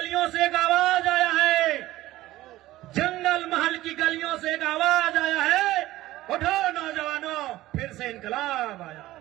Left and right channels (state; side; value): quieter; left; 16.3 dB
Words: से एक आवाज आया है, जंगल महल की गलियों से एक आवाज आया है, उठो नौजवानों फिर से इनकलाब आया।